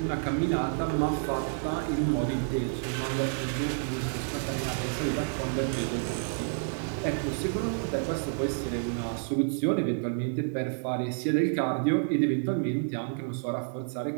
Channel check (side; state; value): left; silent; digital silence